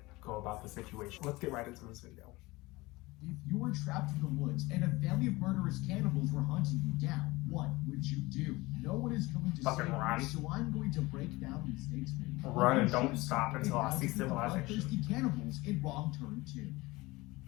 go about the situation. Let's get right into this video. If you were trapped in the woods and a family of murderous cannibals were hunting you down, what would you do? No one is going to save you, so I'm going to break down the mistakes made. Run and don't stop until I see civilization. Thirsty cannibals in Wrong Turn 2.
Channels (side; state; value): right; quieter; 21.5 dB